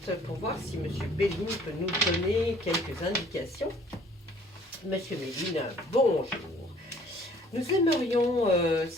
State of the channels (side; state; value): both; normal; correlation 0.56